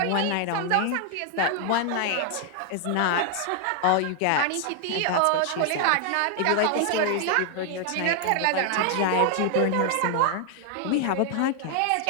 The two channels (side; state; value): both; different; correlation 0.00